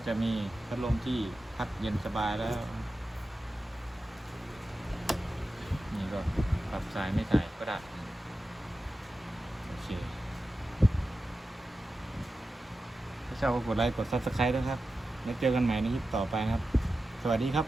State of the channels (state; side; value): normal; both; correlation 0.92